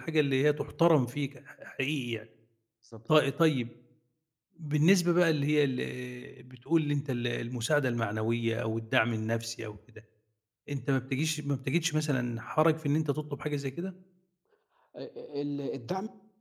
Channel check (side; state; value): both; identical; correlation 1.00